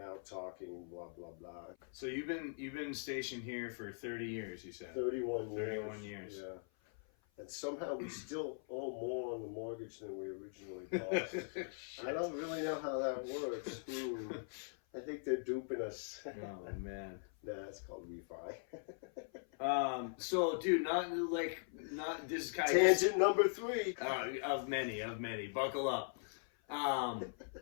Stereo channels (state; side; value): silent; right; 51 dB below the other